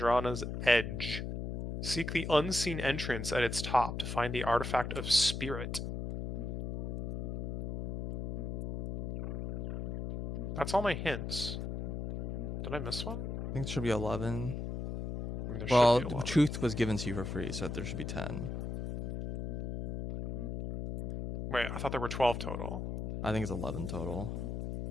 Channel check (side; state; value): left; noise; hum, 4 dB below the sound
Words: edge. Seek the unseen entrance at its top to find the artifact of Spirit. That's all my hints. Did I miss one? I think it should be 11. There Well, should be 11. Truth was given to you for free, so there should be 10. Wait, I thought there were 12 total. I think it's 11 total.